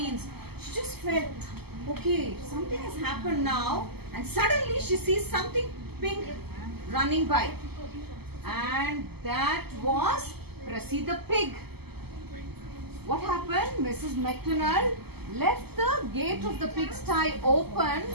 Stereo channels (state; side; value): late; left; 0.96 ms